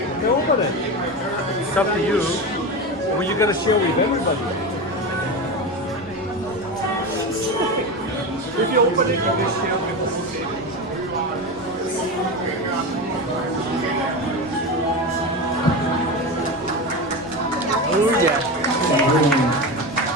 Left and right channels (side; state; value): both; normal; correlation 0.21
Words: You open it. It's up to you. Or you're gonna share with everybody. If you open it, you can share with the whole table. Oh yeah.